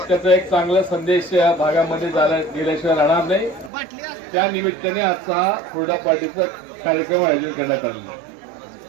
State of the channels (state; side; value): drops out; left; at 3.7 s